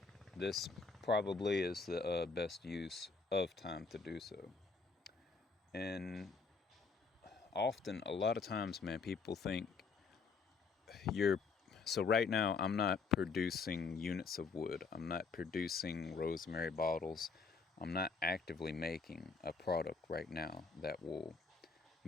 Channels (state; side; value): quieter; right; 4.7 dB